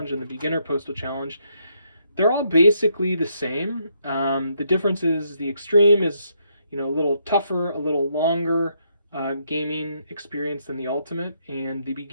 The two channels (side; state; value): both; inverted; correlation -0.75